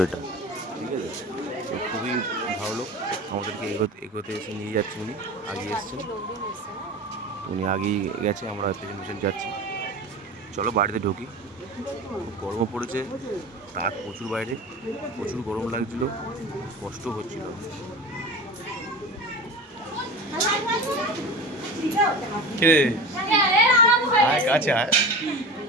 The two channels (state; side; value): normal; both; correlation 0.32